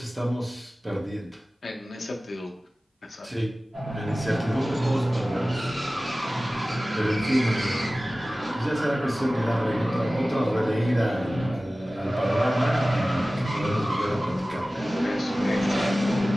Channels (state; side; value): normal; both; correlation 0.97